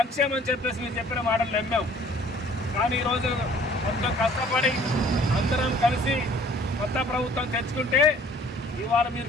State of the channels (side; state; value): both; normal; correlation 0.54